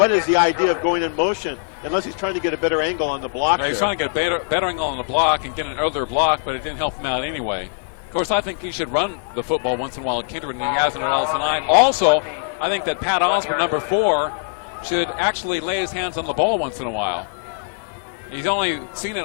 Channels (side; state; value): right; silent; digital silence